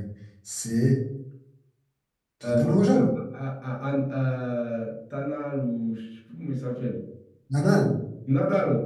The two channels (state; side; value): identical; both; correlation 1.00